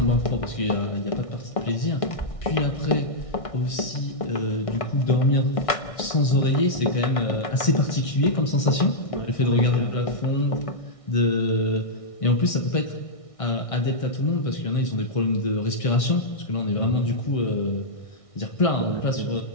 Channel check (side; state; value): right; late; 1.6 ms